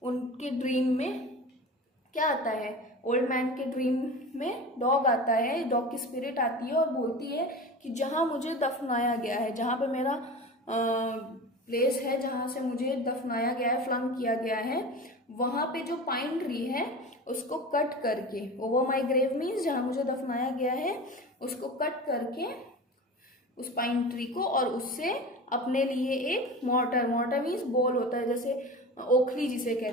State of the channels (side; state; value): both; normal; correlation 0.32